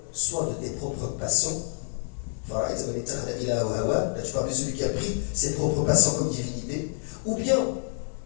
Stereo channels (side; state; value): right; silent; 60 dB below the other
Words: soit de tes propres passions. Là, tu parles de celui qui a pris ses propres passions comme divinité. Ou bien,